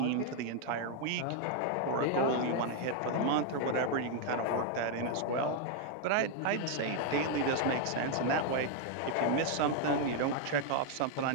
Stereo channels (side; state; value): both; different; correlation 0.00